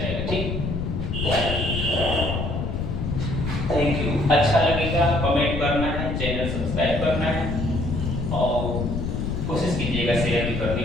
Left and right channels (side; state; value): left; noise; rumble, 2 dB below the sound